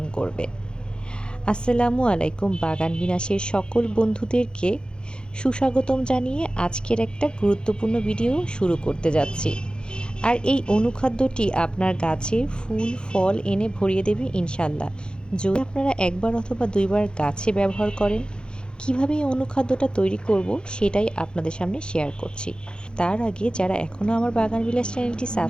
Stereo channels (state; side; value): late; right; 0.050 ms